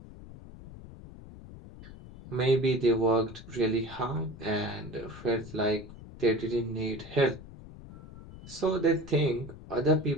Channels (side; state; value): left; noise; rumble, 16 dB below the sound